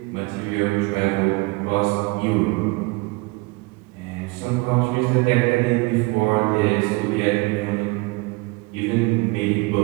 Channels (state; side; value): quieter; left; 25.3 dB